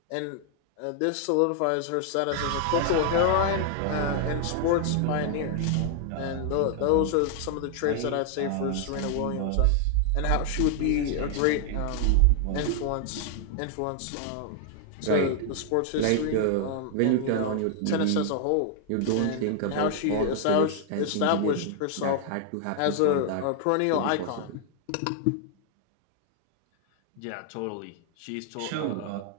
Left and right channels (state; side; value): different; both; correlation 0.00